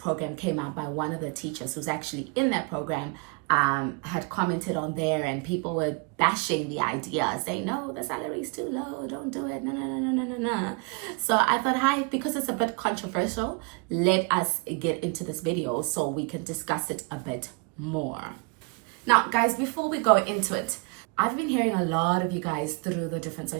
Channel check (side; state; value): left; quieter; 32.2 dB